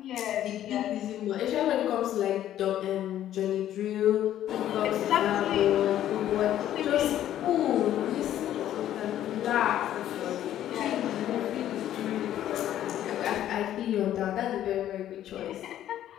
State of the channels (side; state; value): right; quieter; 11.9 dB